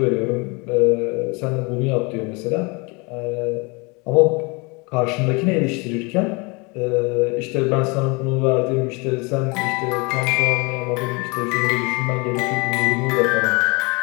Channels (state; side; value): quieter; right; 29.0 dB